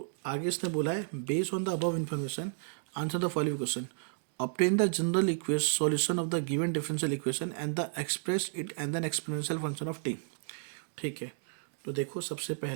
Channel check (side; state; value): left; silent; digital silence